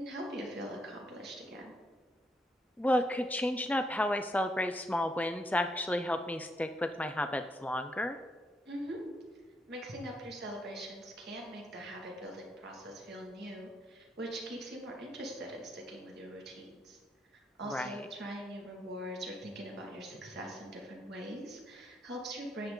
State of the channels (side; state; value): both; normal; correlation 0.76